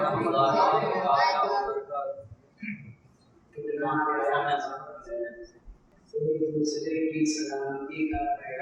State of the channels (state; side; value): identical; both; correlation 1.00